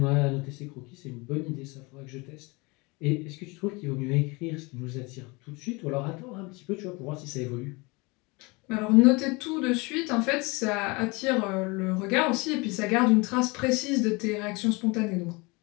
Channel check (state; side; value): quieter; right; 26.5 dB